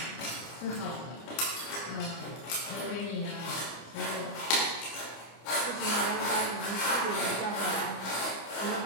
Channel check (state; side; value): late; right; 25 ms